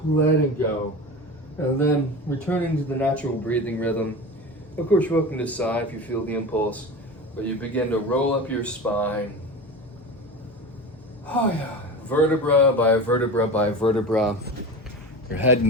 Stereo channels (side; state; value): both; normal; correlation 0.30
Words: Letting go. And then returning to the natural breathing rhythm. Of course, you're welcome to sigh if you feel the impulse, but you begin to roll up your spine. Oh yeah. Vertebra by vertebra by vertebra. Your head